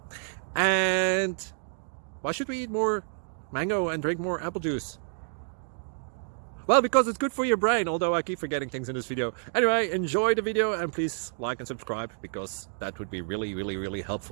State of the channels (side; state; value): left; silent; 59 dB below the other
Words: And why should we eat more mango and drink more apple juice? Well, because it's good for your brain, although I keep forgetting things in this video. Anyway, enjoy the video and please like and subscribe, because that would be really